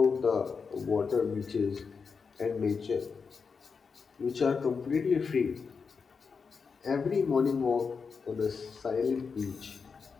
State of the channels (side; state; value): right; quieter; 5.4 dB